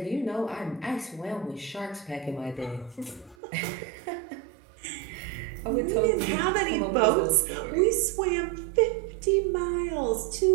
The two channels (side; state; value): left; drops out; at 3.4 s